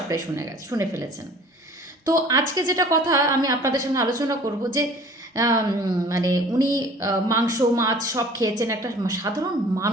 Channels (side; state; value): both; normal; correlation 0.48